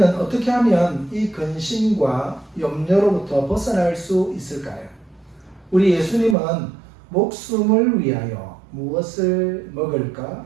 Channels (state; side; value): drops out; left; at 6.4 s